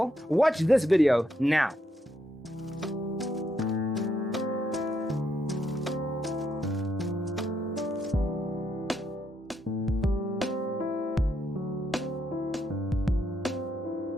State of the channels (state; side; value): normal; both; correlation 0.77